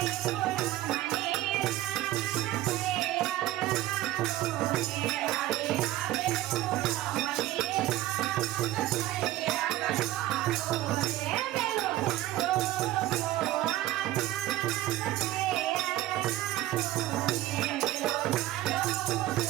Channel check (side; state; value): left; quieter; 15.4 dB